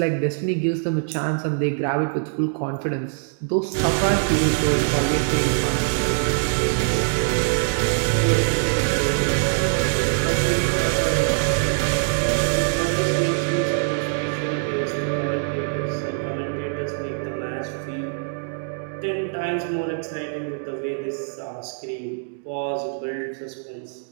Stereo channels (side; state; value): left; silent; digital silence